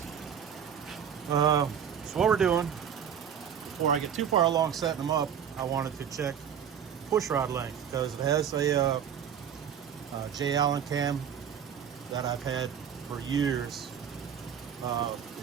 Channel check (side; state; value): left; quieter; 8.3 dB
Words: So what we're doing, before I get too far along setting them up, I wanted to check push rod length, because it has a J. Allen cam that I've had for years.